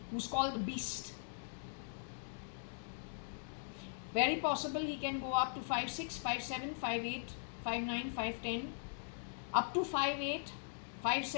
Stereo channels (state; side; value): silent; right; digital silence